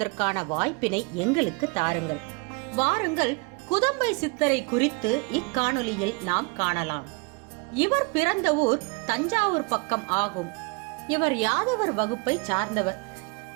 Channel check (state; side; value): quieter; left; 31.2 dB